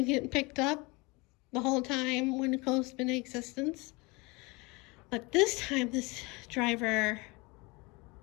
getting picked up the whole time Winco's been in existence. But this time, this driver,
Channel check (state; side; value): quieter; right; 26.0 dB